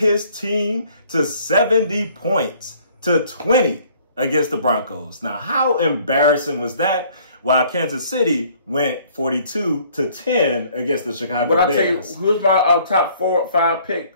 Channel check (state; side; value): inverted; both; correlation -0.58